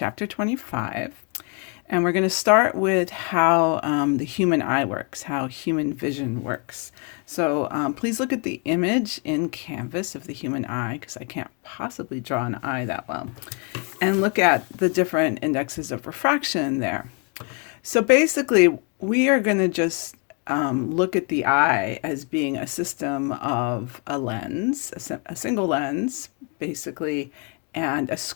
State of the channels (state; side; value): quieter; right; 34.7 dB